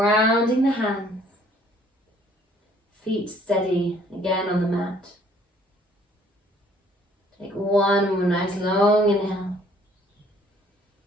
the hands. Feet steady again on the mat. Take one more nice long inhale.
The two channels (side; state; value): both; normal; correlation 0.60